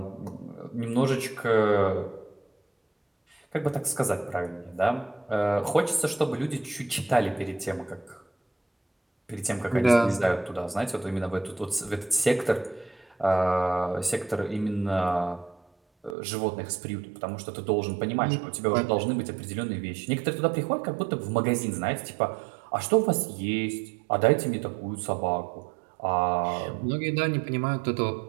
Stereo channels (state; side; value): drops out; left; at 16.2 s